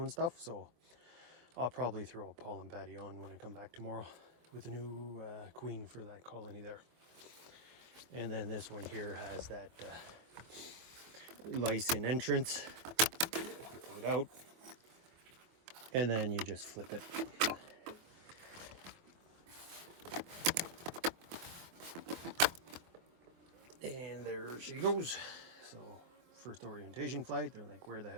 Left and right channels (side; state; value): left; late; 24 ms